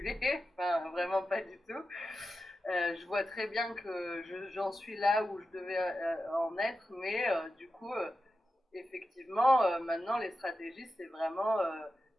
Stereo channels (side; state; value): both; normal; correlation 0.91